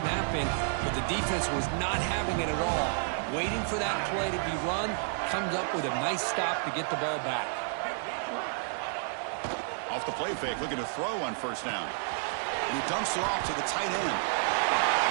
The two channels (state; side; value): silent; left; digital silence